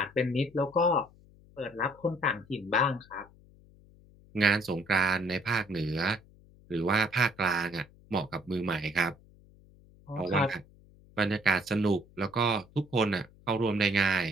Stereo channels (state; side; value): noise; left; hum, 26 dB below the sound